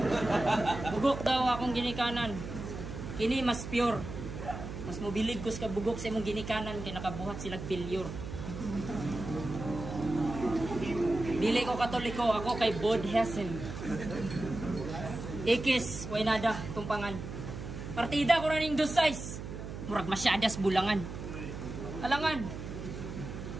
Bugok daw akong ginikanan. Kini mas pure. Mas mobilig ko sa bugok sa imong ginikanan kay nakabuhat silang failure. Dili ko Katoliko, ako kay Bodhessen. Ikis, way nada, tumpangan. Partida ko na ning 2-6. Murag masyadas bulangan. Alangan.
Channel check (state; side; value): noise; right; hum, 8 dB below the sound